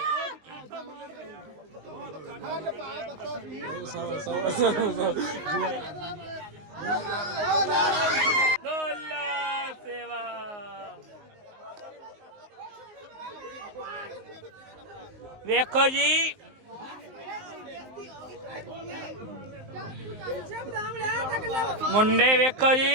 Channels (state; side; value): late; left; 19 ms